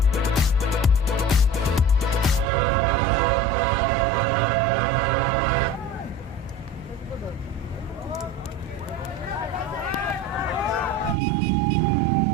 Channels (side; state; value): both; normal; correlation 0.37